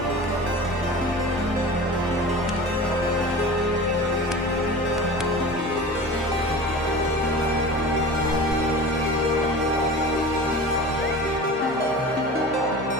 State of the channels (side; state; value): both; normal; correlation 0.35